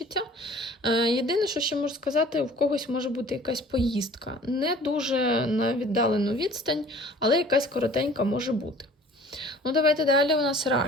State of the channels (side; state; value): both; normal; correlation 0.49